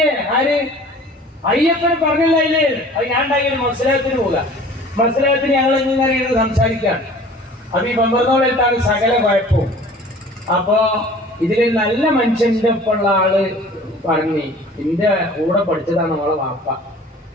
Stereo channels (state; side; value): normal; both; correlation 0.47